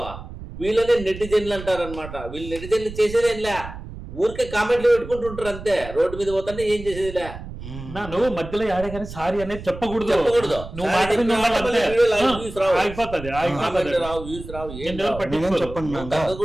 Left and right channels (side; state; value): right; noise; rumble, 12 dB below the sound